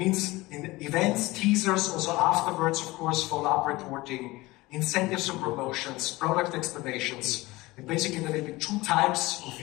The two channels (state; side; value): quieter; right; 20.6 dB